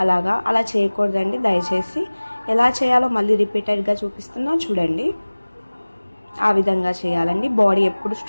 అలా చేయకూడదండి. దయచేసి ఎలా చేయాలో మళ్ళీ రిపీటెడ్గా చూపిస్తున్నా చూడండి. ఆ విధంగా చేయాలండి. బాడీ ఎప్పుడు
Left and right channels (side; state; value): both; inverted; correlation -1.00